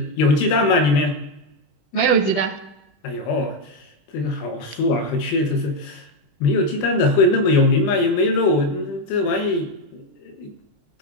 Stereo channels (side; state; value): right; late; 20 ms